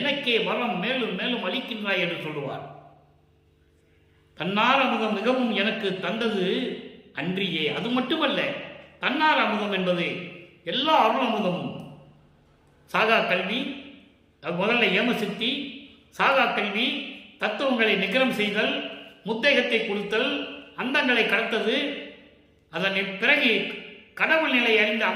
வரம் மேலும் மேலும் அளிக்கின்றாய் என்று சொல்லுவார். தன்னார் அமுதம் மிகவும் எனக்கு தந்தது அன்றியே. அது மட்டுமல்ல, தன்னார் அமுதம் என்பது எல்லா அருள் அமுதமும். சாகா கல்வி, முதல்ல ஏமசித்தி, சாகா கல்வி, தத்துவங்களை நிகரம் செய்தல், முத்தேகத்தை கொடுத்தல், அந்தங்களை கடத்தது, அதன் பிறகு கடவுள் நிலை அறிந்து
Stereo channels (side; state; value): both; identical; correlation 1.00